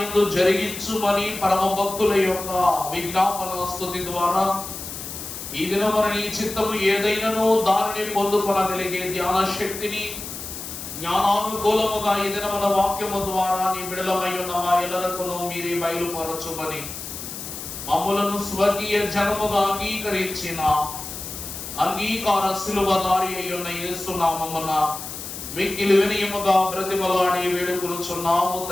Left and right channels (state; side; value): noise; left; hiss, 9 dB below the sound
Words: జరిగించుమని పరమ భక్తుల యొక్క విజ్ఞాపన స్తుతి ద్వారా ఈ దినమున నీ చిత్తము ఏదైనాను దానిని పొందుకొనగలిగే ధ్యాన శక్తిని జ్ఞానానుకూలముగా ఈ దినమున వాక్యము ద్వారా నీ బిడలమై ఉన్న మా ఎల్లరకును మీరే బయలుపరచుమని మమ్ములను స్వర్గీయ జనముగా అంగీకరించిన అంగీకార శిలువదారి అయ్యున్న యేసు నామమున మిక్కిలి వినయముగా బ్రతిమలాడి వేడుకొనుచున్నాము